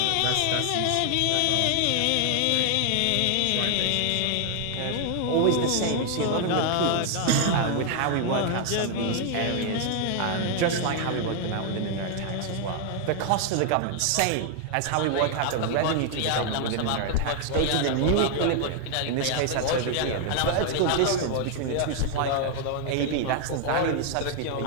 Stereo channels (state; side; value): different; both; correlation 0.00